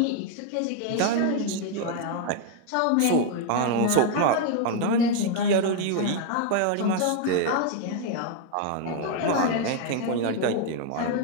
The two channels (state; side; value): different; both; correlation 0.00